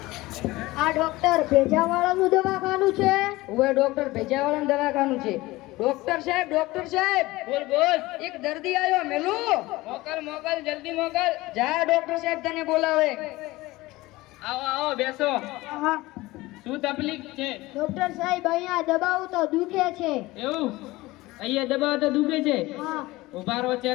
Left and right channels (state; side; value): quieter; right; 19.7 dB